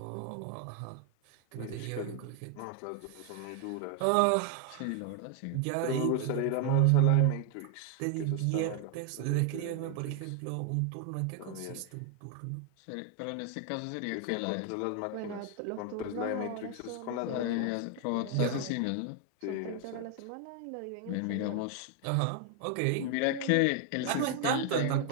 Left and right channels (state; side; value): different; both; correlation 0.00